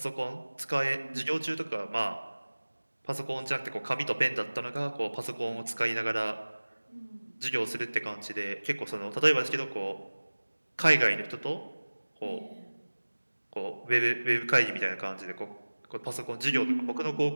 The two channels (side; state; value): both; inverted; correlation -1.00